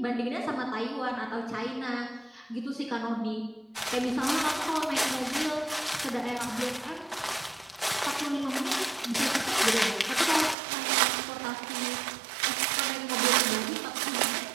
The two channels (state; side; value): drops out; left; at 10.6 s